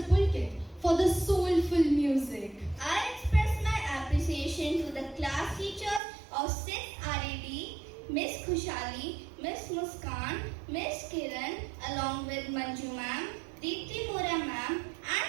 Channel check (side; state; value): left; drops out; at 6.0 s